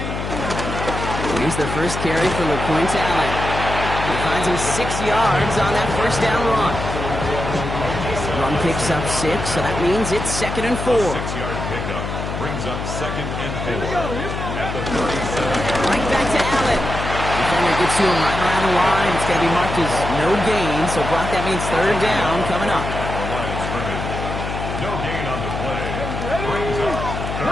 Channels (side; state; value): left; noise; hum, 5 dB below the sound